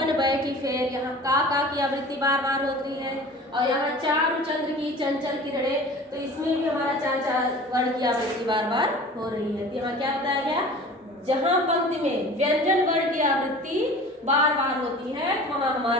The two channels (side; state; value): both; normal; correlation 0.41